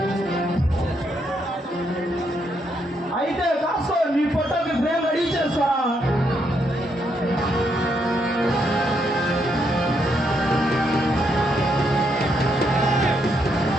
అయితే కాస్త నీ ఫోటోకి ఫ్రేమ్ రెడీ చేస్తా.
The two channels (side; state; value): both; normal; correlation 0.77